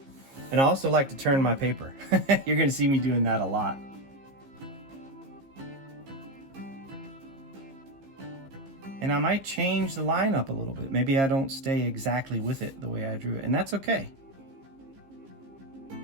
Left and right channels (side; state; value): left; late; 15 ms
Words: And I also like to turn my paper. You're gonna see me doing that a lot. And I might change the line up a little bit. Maybe I don't stay exactly with it the way I drew it, and that's okay.